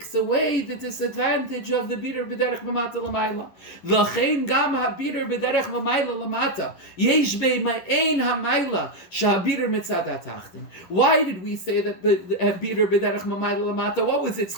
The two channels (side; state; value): right; late; 11 ms